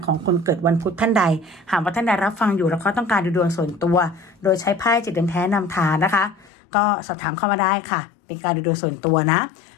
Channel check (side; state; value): right; drops out; at 6.5 s